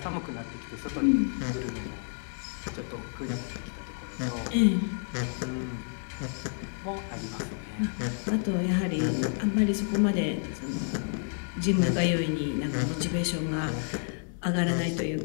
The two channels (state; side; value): silent; right; 58 dB below the other